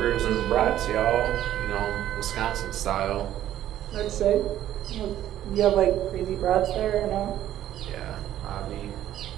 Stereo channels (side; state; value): left; quieter; 12.3 dB